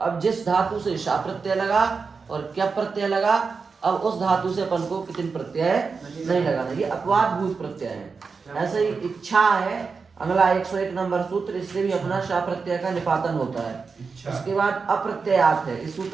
जिस धातु से शा प्रत्यय लगा और क्या प्रत्यय लगा, अब उस धातु से अपन को कितने प्रत्यय नहीं लगाना। ये अपवाद भूत प्रत्यय है। ऐसे ही इच्छा है अगला 101 नंबर सूत्र, इससे भी अपना शा प्रत्यय का निपातन होता है। उसके बाद अप्रत्ययात है, इस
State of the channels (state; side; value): quieter; left; 4.9 dB